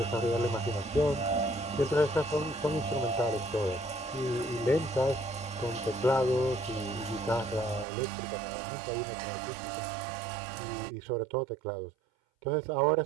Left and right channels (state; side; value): drops out; left; at 7.9 s